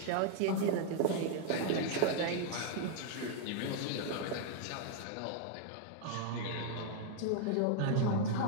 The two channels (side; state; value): both; different; correlation 0.00